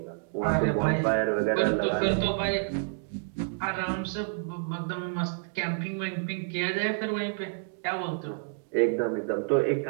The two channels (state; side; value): silent; left; digital silence